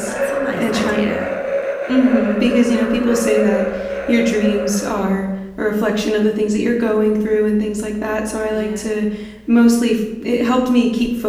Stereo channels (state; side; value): identical; both; correlation 1.00